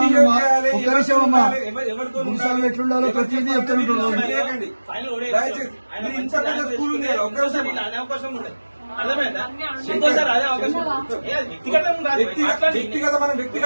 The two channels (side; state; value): both; inverted; correlation -1.00